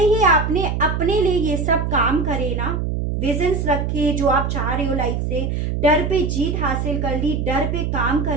ही आपने अपने लिए ये सब काम करे ना, विजन्स रखे जो आप चाह रहे हो लाइफ से, डर पे जीत हासिल कर ली, डर पे काम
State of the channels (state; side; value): noise; right; hum, 1 dB below the sound